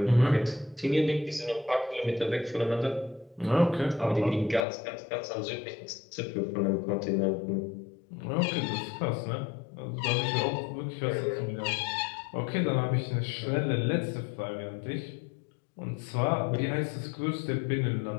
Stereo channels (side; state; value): right; drops out; at 4.7 s